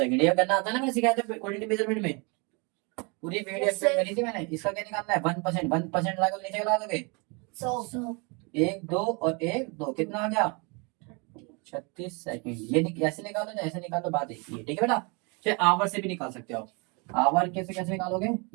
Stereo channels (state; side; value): quieter; left; 31.3 dB